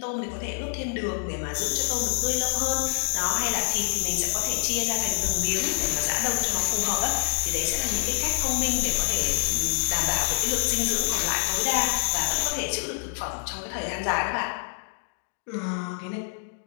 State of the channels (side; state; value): right; silent; digital silence